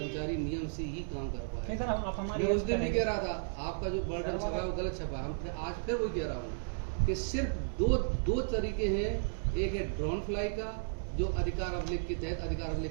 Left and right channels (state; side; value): silent; left; digital silence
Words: नियम से ही काम कर पाए। मैं उस दिन भी कह रहा था, आपका जो बर्डन छपा है वो गलत छपा है। हम आज फिर वही कह रहा हूँ कि सिर्फ दो तरीके हैं। एक है ड्रोन फ्लाई का, जो अधिकार अभिलेख के तहत अधिकार